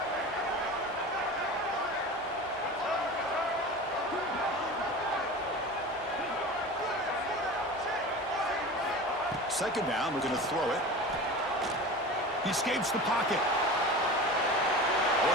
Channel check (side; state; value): both; normal; correlation 0.33